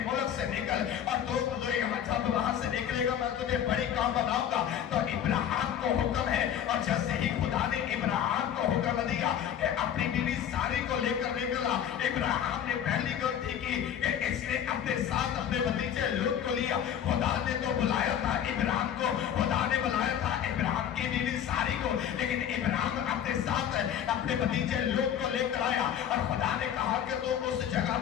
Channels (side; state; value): right; quieter; 9.6 dB